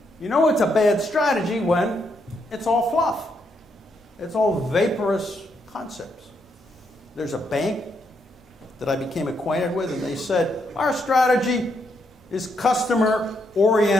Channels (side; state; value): both; normal; correlation 0.78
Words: You know it's a bad strategy when it's all fluff. It's all vaporous concepts. There's a bank that I became acquainted with, and they said, our strategy is